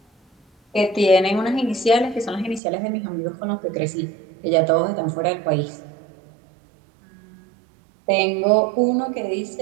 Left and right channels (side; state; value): left; drops out; at 2.6 s